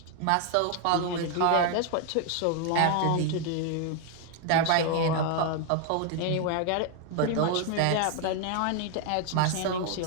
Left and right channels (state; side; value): different; both; correlation 0.00